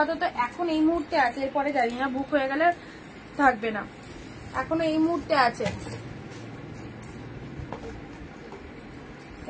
এখন এই মুহূর্তে আছে, এরপরে জানি না, বুক হয়ে গেলে থাকবে না, এখনো এই মুহূর্তে আছে।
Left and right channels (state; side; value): identical; both; correlation 1.00